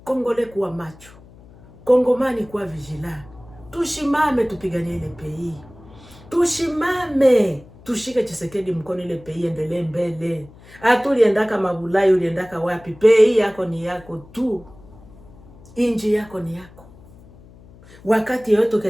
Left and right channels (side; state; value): left; noise; hum, 23 dB below the sound